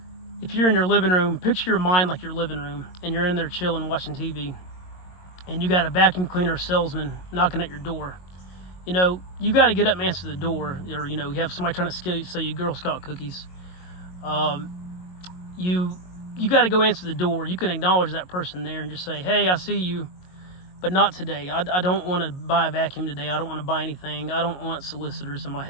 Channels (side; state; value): right; late; 22 ms